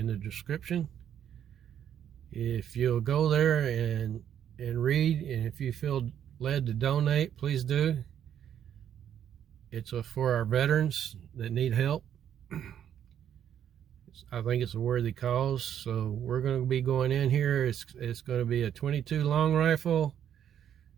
the description. If you'll go there and read, and if you feel led to donate, please do. It's for our veterans that need help. I think it's a worthy cause, so we're going to be going in here. It's going to be a 22 long rifle,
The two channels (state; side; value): quieter; left; 9.6 dB